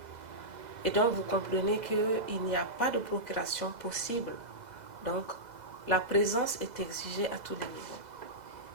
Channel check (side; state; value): left; late; 2.0 ms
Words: Et donc vous comprenez qu'il n'y a pas de procuration possible. Donc la présence est exigée à tous les niveaux.